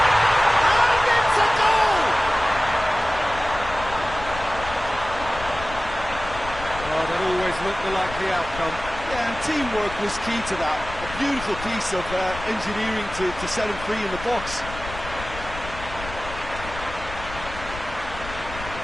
And it's a goal! Oh, that always looked the likely outcome. Yeah, and teamwork was key to that. A beautiful piece of engineering to set him free in the box.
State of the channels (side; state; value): left; noise; rumble, 12 dB below the sound